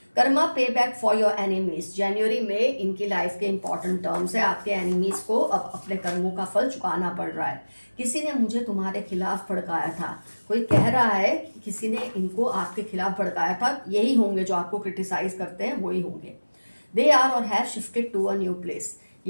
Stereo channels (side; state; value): both; inverted; correlation -1.00